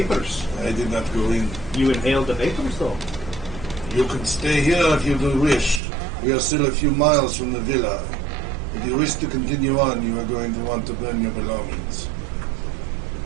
I did not go in. You inhaled the vapors, though. You can stay here if you do wish. We are still a few miles from the villa. If you wish to continue on, you are going to want to burn your belongings.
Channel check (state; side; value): drops out; left; at 5.8 s